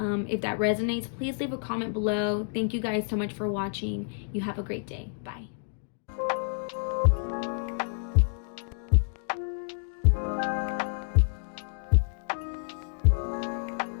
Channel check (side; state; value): right; silent; digital silence